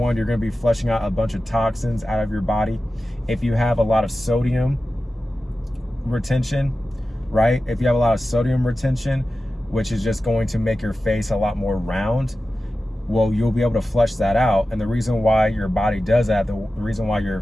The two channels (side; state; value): both; normal; correlation 0.94